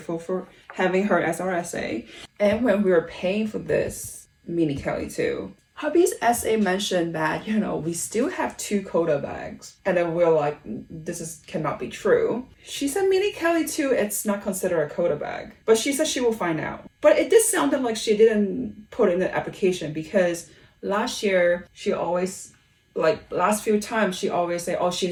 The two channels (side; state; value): both; identical; correlation 1.00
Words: for having her as our SA. And when we were paying for this mini Kelly too, hubby's SA mentioned that, you know, we still have 2 Quota bags. And then we're like, this cannot be true. She said mini Kelly too, it's not considered a Quota bag. But she said she will find out. But it did sound like she didn't put in the application, because last year she always, like last few times, she always say, oh, she